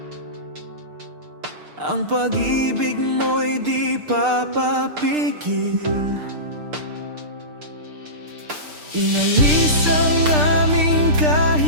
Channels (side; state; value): left; late; 6.7 ms